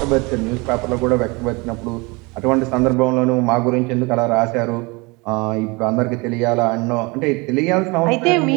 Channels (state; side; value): quieter; left; 26.7 dB